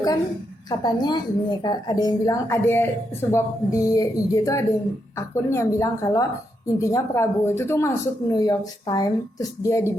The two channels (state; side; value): normal; both; correlation 0.81